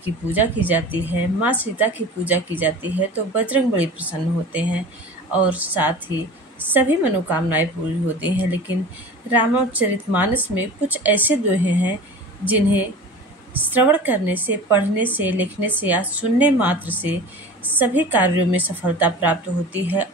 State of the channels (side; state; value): both; normal; correlation 0.37